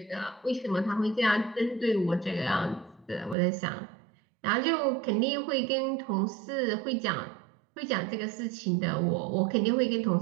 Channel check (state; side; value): drops out; left; at 3.4 s